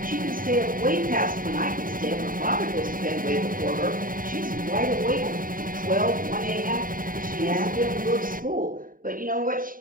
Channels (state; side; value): late; left; 0.40 ms